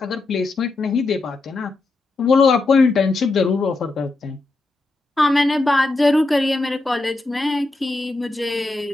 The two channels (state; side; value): quieter; right; 3.2 dB